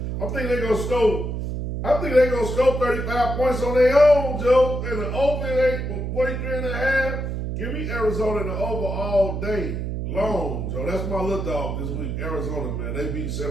I think they're going to score 35 points on their own, Joe. And the over 43 and a half. Give me Arizona in the over all day long, Joe. That's my little dog this week. Arizona, man. They beat San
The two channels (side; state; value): right; noise; hum, 3 dB below the sound